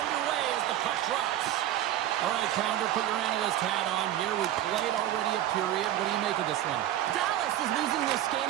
as the puck drops. All right, Pounder, put your analyst hat on here. We played already a period. What do you make of this one? Dallas is losing this game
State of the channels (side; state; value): left; quieter; 12.5 dB